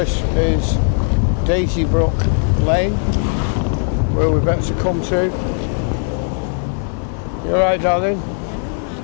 is Daisybrook Lane, where we're about to come to. You alright, darling?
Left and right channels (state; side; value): silent; right; 56 dB below the other